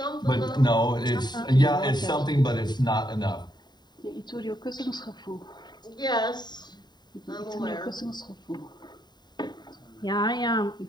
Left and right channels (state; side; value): late; right; 0.21 ms